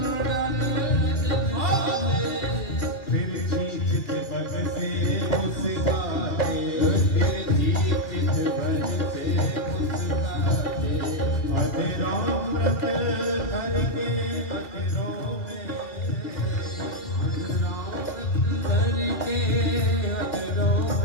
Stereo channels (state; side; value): late; right; 2.2 ms